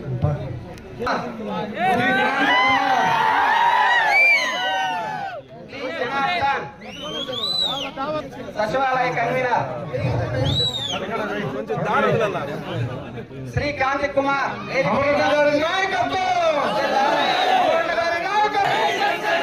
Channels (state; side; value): identical; both; correlation 1.00